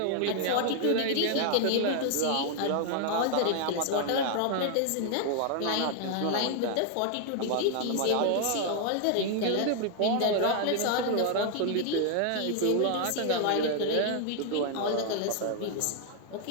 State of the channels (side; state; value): both; different; correlation 0.00